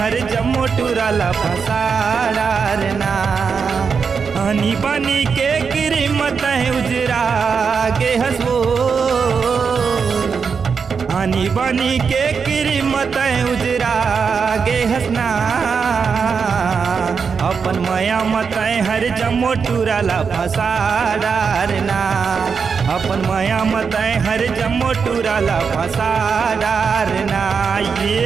हर जम्मो टूरला फसाडारना। आनी बनी के कीमत उजरा गे हसबो, आनी बनी के कीमत उजरा गे हसना। अपन मया मत हर जम्मो टूरला फसाडारना, अपन मया मत हर जम्मो टूरला फसाडारना।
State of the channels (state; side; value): quieter; left; 5.8 dB